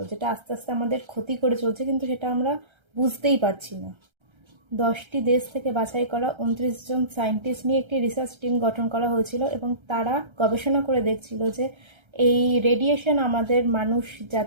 যেটা আস্তে আস্তে আমাদের ক্ষতি করে চলছে, কিন্তু সেটা আমরা বুঝতেই পারছি না। 10টি দেশ থেকে বাছাই করা 29 জন সায়েন্টিস্ট নিয়ে একটি রিসার্চ টিম গঠন করা হয়েছিল, এবং তারা গবেষণা করে দেখছিল যে এই রেডিয়েশন আমাদের মানুষ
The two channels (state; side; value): late; left; 1.3 ms